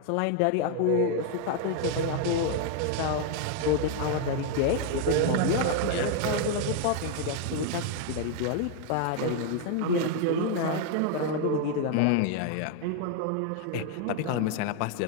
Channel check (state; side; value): different; both; correlation 0.00